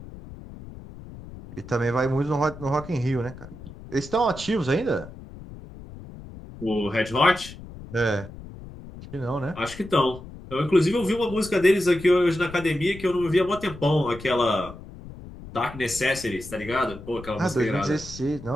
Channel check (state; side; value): noise; left; rumble, 15 dB below the sound